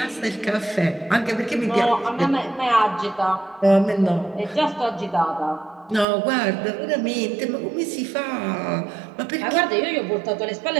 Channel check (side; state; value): left; drops out; at 6.1 s